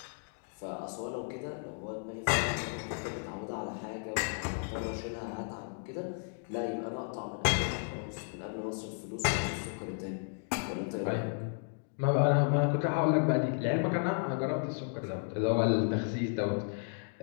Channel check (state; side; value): silent; right; 55 dB below the other